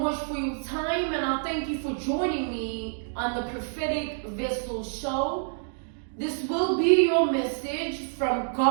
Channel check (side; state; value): left; silent; digital silence